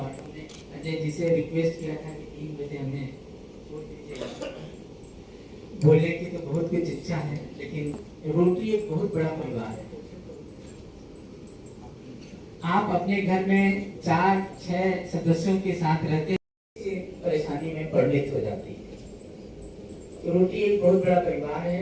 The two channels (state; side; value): identical; both; correlation 1.00